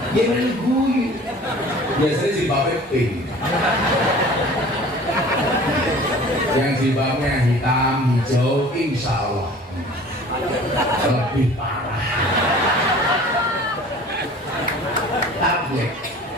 Dia main guyu. Biasanya jilbabnya pink. Yang jilbabnya hitam, hijau, insya Allah lebih parah. Tabligh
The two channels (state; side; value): normal; both; correlation 0.45